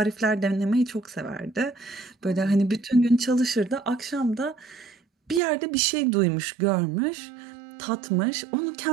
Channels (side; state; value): left; drops out; at 5.4 s